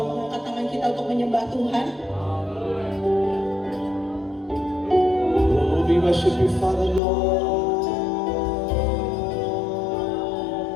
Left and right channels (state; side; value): drops out; right; at 7.0 s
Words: mengangkat tangan kita untuk menyembah Tuhan. Oh, we worship you, Father Lord.